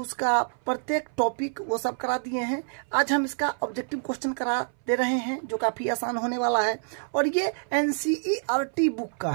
प्रत्येक टॉपिक वो सब करा दिए हैं। आज हम इसका ऑब्जेक्टिव क्वेश्चन करा दे रहे हैं जो काफ़ी आसान होने वाला है और ये NCERT बुक का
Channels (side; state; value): left; silent; 60 dB below the other